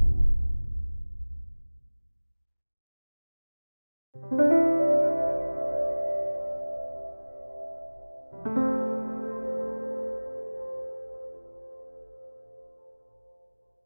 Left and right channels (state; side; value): inverted; both; correlation -1.00